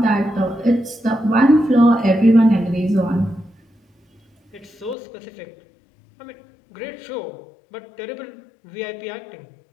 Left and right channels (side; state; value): right; drops out; at 5.0 s